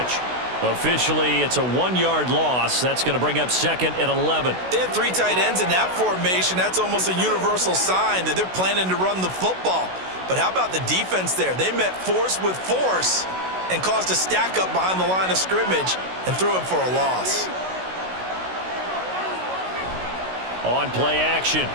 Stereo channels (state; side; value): late; left; 16 ms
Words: Officially, it's a 1-yard loss. That's going to bring up 2nd and 11. They had 3 tight ends in that formation. That's almost a universal sign that they're planning to run the football. But how about the defense there? They met force with force and caused a stack up behind the line of scrimmage and threw him for a loss. On play action,